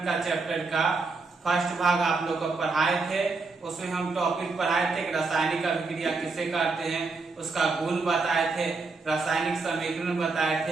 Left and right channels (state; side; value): quieter; left; 4.0 dB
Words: का चैप्टर का फर्स्ट भाग आप लोग को पढ़ाए थे। उसमें हम टॉपिक पढ़ाए थे कि रासायनिक अभिक्रिया किसे कहते हैं, उसका गुण बताए थे, रासायनिक समीकरण बताए